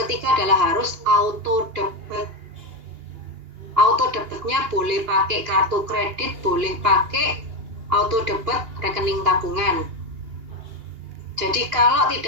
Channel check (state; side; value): late; left; 2.8 ms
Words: ketiga adalah harus auto debit. Auto debitnya boleh pakai kartu kredit, boleh pakai auto debit rekening tabungan. Jadi kalau